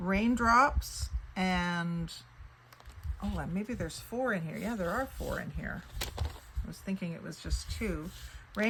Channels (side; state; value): both; identical; correlation 1.00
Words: and oh, maybe there's 4 in here. Yeah, there are 4 in here. I was thinking it was just 2.